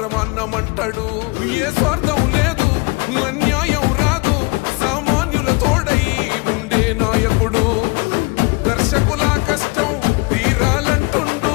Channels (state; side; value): quieter; right; 27.3 dB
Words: ఏ స్వార్థం లేదు అన్యాయం రాదు సామాన్యుల తోడై ఉండే నాయకుడు. కర్షకుల కష్టం తీరాలంటుండు